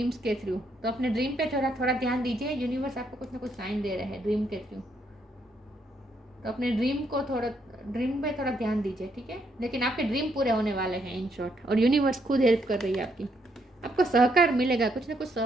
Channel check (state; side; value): normal; both; correlation 0.74